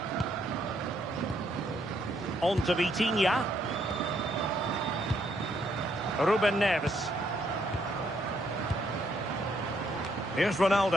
On to Vitinha. Ruben Neves. Here's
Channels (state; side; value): normal; both; correlation 0.72